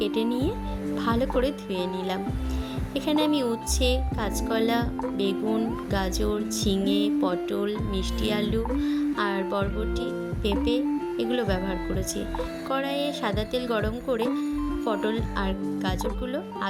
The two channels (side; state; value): both; identical; correlation 1.00